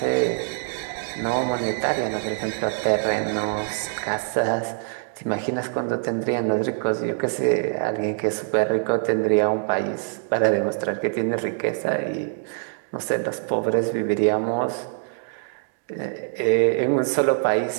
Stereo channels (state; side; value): silent; left; digital silence